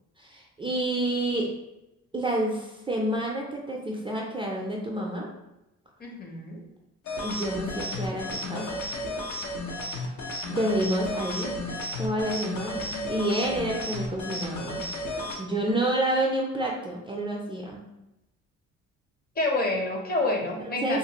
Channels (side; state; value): both; normal; correlation 0.39